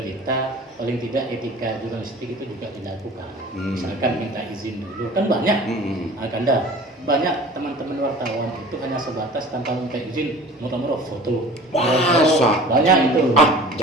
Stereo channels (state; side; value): normal; both; correlation 0.42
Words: paling tidak etika jurnalistik itu juga dilakukan. Misalkan minta izin dulu, kan banyak. Banyak teman-teman wartawan itu hanya sebatas tanpa minta izin, murah-murah foto. Banyak itu.